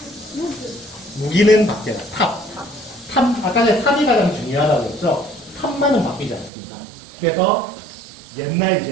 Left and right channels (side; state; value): left; drops out; at 6.5 s